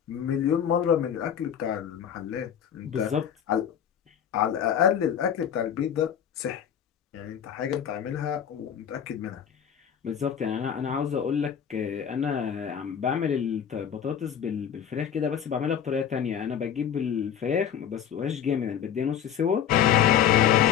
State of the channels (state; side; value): quieter; right; 8.9 dB